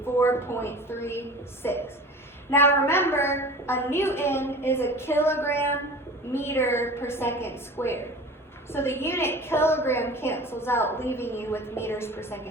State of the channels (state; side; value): normal; both; correlation 0.39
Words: 4.36. Now remember, a newton is a kilogram meter per second squared. So the unit kilogram cancels out, leaving you with meters per